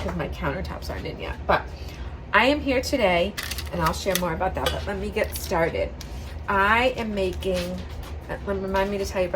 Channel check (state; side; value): identical; both; correlation 1.00